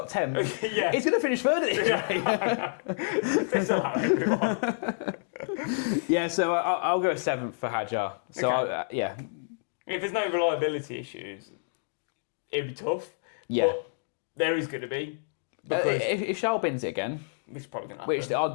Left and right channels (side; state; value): right; silent; digital silence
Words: 10th. Yeah. He's going to finish third at this rate. Allow everyone. Yeah, so I'll go 7th for Hadjar. So okay. If there's no reliability issues, it'd be tough. Yeah. But there is going to be. Because if Charles wins it again, which is probably going to happen. Which the